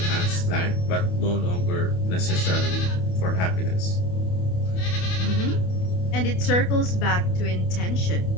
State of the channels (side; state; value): right; late; 28 ms